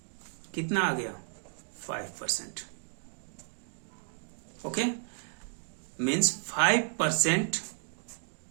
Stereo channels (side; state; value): left; silent; digital silence